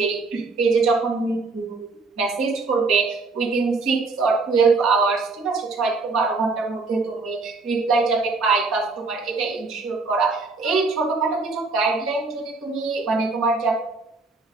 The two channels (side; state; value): left; quieter; 3.9 dB